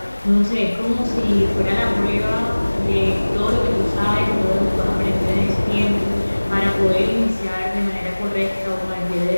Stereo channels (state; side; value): inverted; both; correlation -1.00